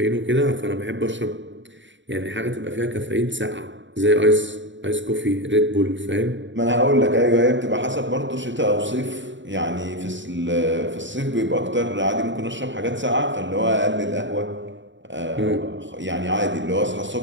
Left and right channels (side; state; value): left; late; 0.54 ms